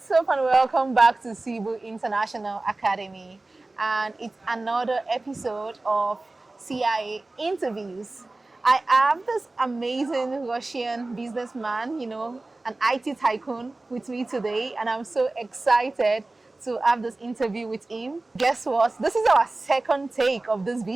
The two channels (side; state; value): left; quieter; 3.0 dB